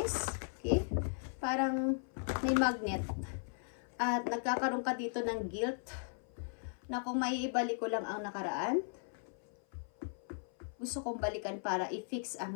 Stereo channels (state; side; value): silent; right; 53 dB below the other